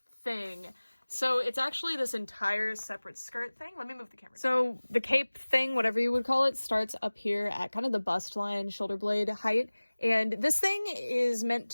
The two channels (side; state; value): both; inverted; correlation -1.00